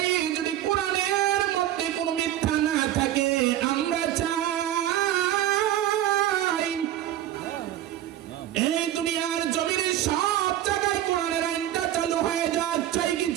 যদি কোরআনের মধ্যে কোনো মিথ্যা না থাকে, আমরা চাই এই দুনিয়ার জমিনে সব জায়গায় কোরআনের আইনটা চালু হয়ে যাক। চাই কি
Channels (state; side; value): quieter; left; 12.4 dB